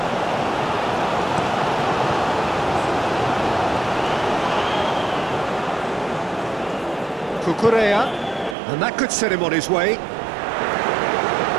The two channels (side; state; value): left; drops out; at 8.6 s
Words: Cucurella, and that could set him on his way.